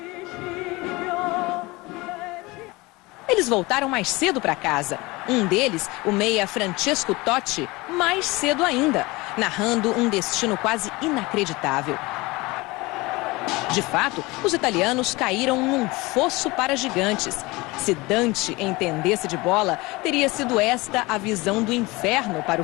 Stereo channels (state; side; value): quieter; right; 22.8 dB